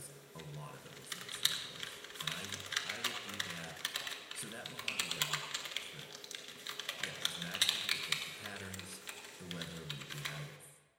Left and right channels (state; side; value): identical; both; correlation 1.00